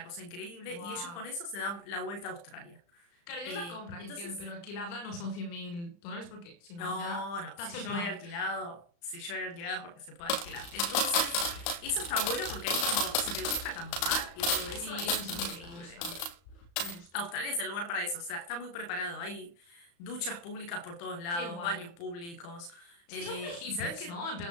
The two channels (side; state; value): right; late; 35 ms